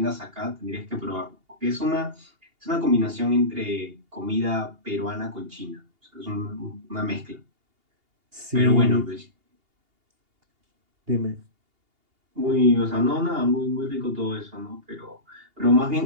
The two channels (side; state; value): left; late; 2.8 ms